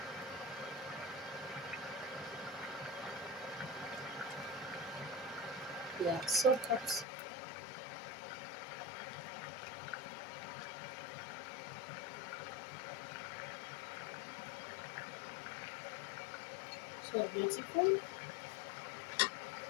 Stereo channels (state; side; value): drops out; right; at 7.1 s